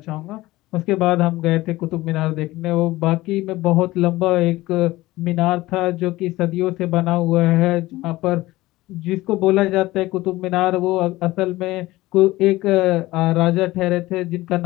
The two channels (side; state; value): right; quieter; 18.3 dB